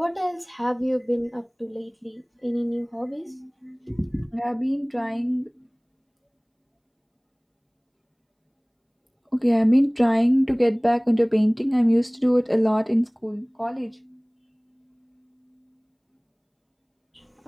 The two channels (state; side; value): identical; both; correlation 1.00